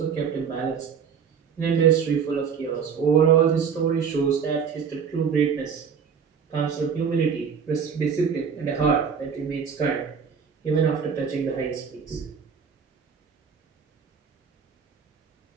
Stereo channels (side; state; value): left; quieter; 6.7 dB